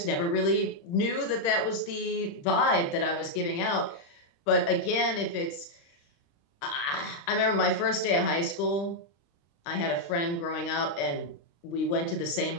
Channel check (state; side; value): late; right; 35 ms